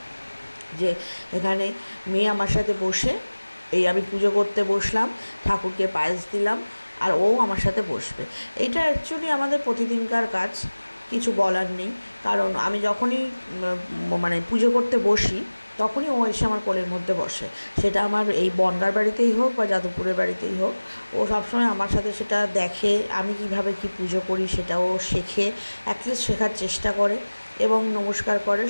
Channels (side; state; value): both; inverted; correlation -1.00